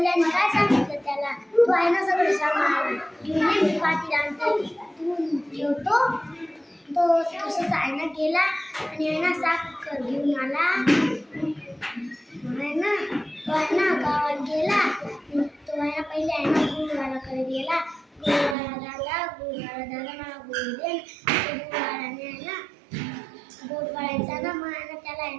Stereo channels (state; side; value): drops out; left; at 18.6 s